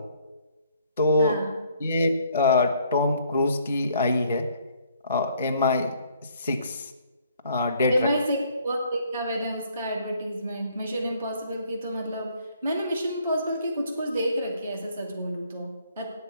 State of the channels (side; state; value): both; inverted; correlation -0.63